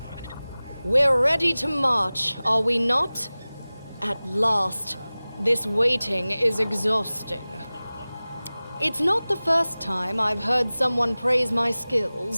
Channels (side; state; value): both; inverted; correlation -0.98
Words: We're ready to march, are we not? At last. This waiting is exhausting. It's not the first time I've heard someone praise my